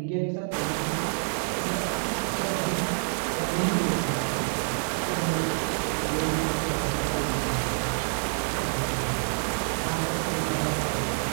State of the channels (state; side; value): silent; left; 60 dB below the other